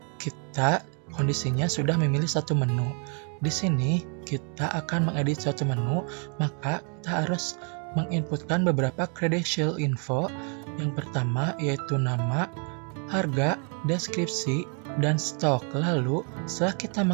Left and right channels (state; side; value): quieter; left; 39.7 dB